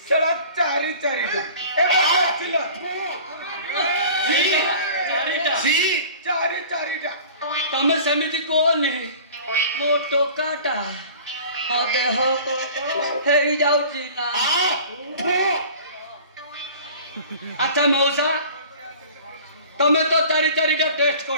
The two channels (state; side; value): inverted; both; correlation -0.44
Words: ସେଟା ଚାରିଟା ତମେ ସେମିତି କୁହନି ମୋ ଟୋକାଟା ମୋ ଦେହ ହେଇଯାଉଛି ନା ଆଚ୍ଛା ମଉସା ତମେ ତ ଚାରିଟା ଟେଷ୍ଟ